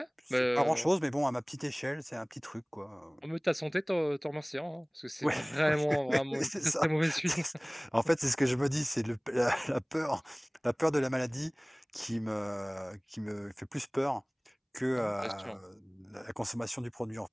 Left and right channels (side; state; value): both; identical; correlation 1.00